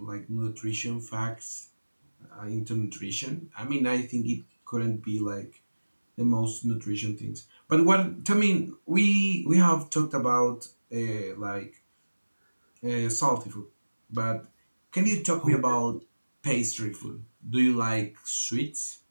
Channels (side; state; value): both; inverted; correlation -1.00